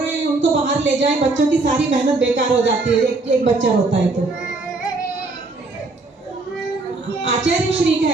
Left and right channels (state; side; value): quieter; left; 3.4 dB